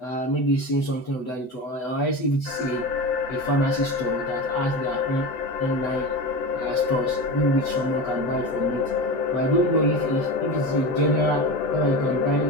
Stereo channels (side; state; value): right; late; 8.0 ms